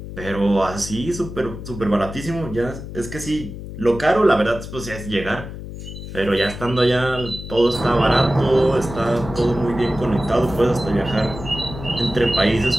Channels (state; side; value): noise; left; hum, 10 dB below the sound